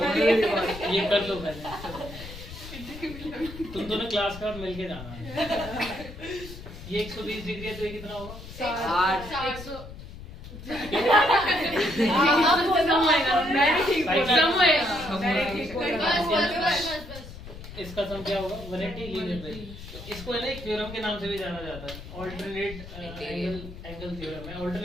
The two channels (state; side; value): noise; left; rumble, 13 dB below the sound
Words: ये कर लो पहले, तुम दोनों क्लास का मिलके जाना है। ये 120 डिग्री है तो ये कितना होगा? 60। 100 इसका सम क्या होगा? 180 लीनियर पे। इसको है ना एक थ्योरम के नाम से भी जाना जाता है, ऑल्टरनेट एंगल थ्योरम है।